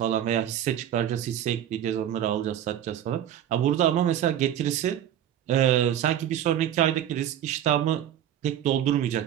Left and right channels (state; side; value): quieter; left; 10.7 dB